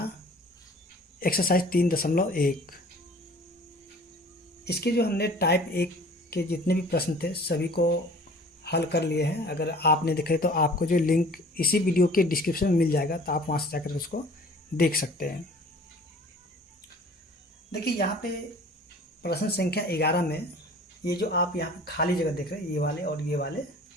एक्सरसाइज 3.1। इसके जो हमने टाइप 1 के जितने भी प्रश्न थे सभी को हल कर लिए हैं। अगर आपने देखे तो आपको जो लिंक इसी वीडियो के डिस्क्रिप्शन में मिल जाएगा, तो आप वहाँ से जाकर उसको देख सकते हैं। देखिए यहाँ पे प्रश्न संख्या 11 में ये जो आप यहाँ पे खाली जगह देख रहे हैं, ये वाले और ये वाले,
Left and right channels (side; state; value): both; normal; correlation 0.48